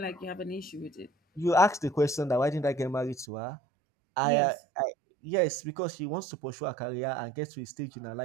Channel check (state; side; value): drops out; left; at 3.2 s